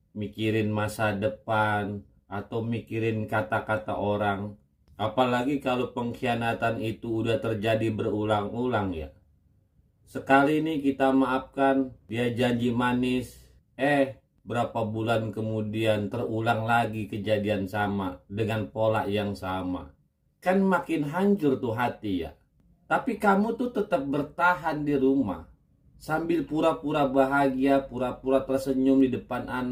mikirin masa depan, atau mikirin kata-kata orang. Apalagi kalau pengkhianatan itu udah terjadi berulang-ulang ya. Sekali ini kita maafkan, dia janji manis, berapa bulan kemudian terulang lagi kejadian sama dengan pola yang sama. Kan makin hancur tuh hati ya. Tapi kamu tuh tetap bertahan di rumah sambil pura-pura bahagia, pura-pura tersenyum di depan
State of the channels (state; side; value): identical; both; correlation 1.00